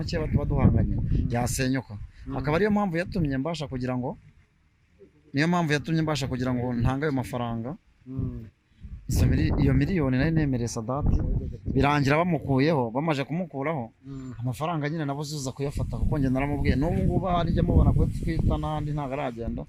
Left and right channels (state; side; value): identical; both; correlation 1.00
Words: tuba duhanganye yasenyuka. Akaba ariyo mpamvu yatumye mbasha kugira ngo ntange ayo mafaranga. Iyo miliyoni nari nemereye Sadati, birangira bamukuyeho. Bamaze kumukuraho, amafaranga nyine nabo uza kuyafata, kuko njye naramubwiye n'ubu ngubu harijya mubona ko twita n'ahandi ntabwo aragenda,